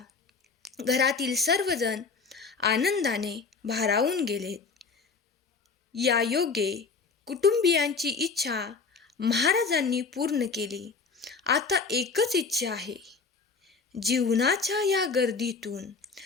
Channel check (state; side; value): quieter; right; 4.8 dB